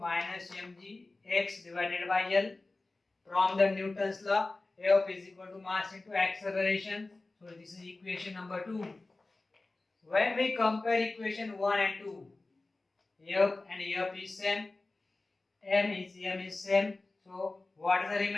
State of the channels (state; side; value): quieter; right; 3.2 dB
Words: mgx divided by L. From the Newton's law, F is equal to mass into acceleration. So this is equation number 2. When we compare equation 1 and 2, F and F is same, M is same. So what is the